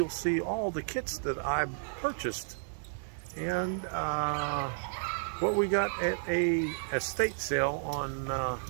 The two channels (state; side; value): silent; left; digital silence